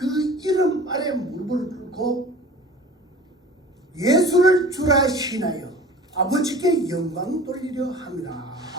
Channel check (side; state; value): both; normal; correlation 0.42